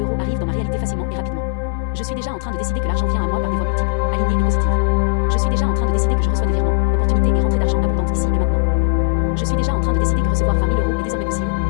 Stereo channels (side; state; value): right; silent; 63 dB below the other